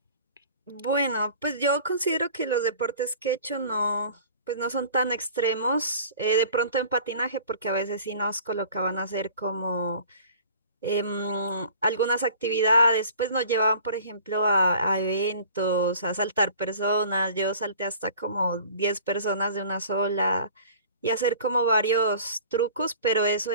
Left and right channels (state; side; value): inverted; both; correlation -0.46